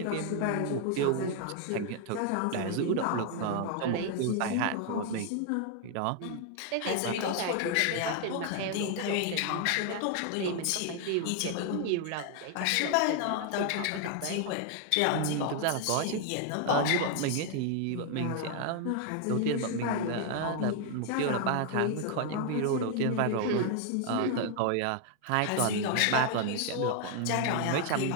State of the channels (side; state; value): both; different; correlation 0.00